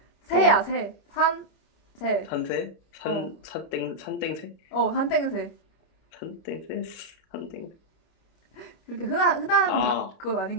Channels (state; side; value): late; right; 27 ms